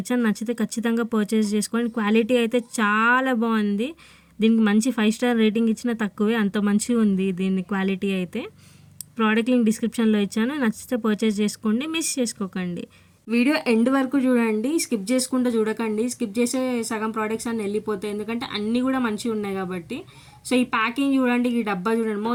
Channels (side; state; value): both; identical; correlation 1.00